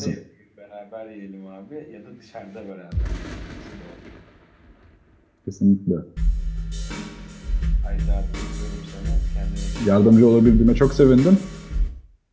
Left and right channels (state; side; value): identical; both; correlation 1.00